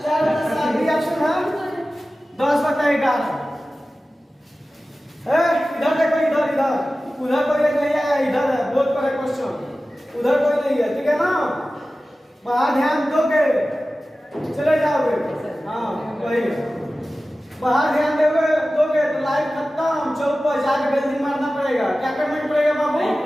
4 बता 7। बी ऑप्शन है 10 बता 11। इधर देखो, इधर उधर कोई नहीं है, इधर है। बोर्ड पर है क्वेश्चन, उधर कोई नहीं है। ठीक है ना, बाहर ध्यान दोगे चले जाओगे। हाँ वही, बाहर ध्यान दोगे तो लाइव खत्म। चौक पर जाकर बेल्डिंग मारना पड़ेगा। क्या करना पड़ेगा बाबू?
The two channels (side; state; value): both; normal; correlation 0.96